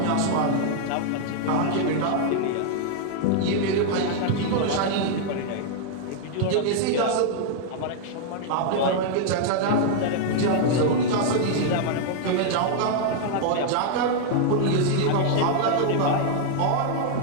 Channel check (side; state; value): both; different; correlation 0.00